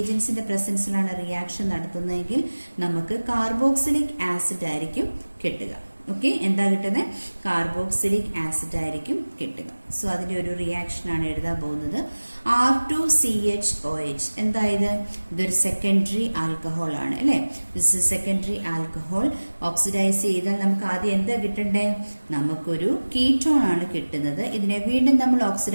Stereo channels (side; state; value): both; inverted; correlation -1.00